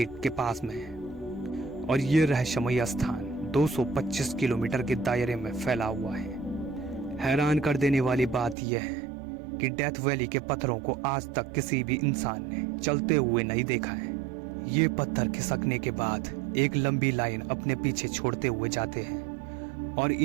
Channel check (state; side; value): drops out; left; at 8.6 s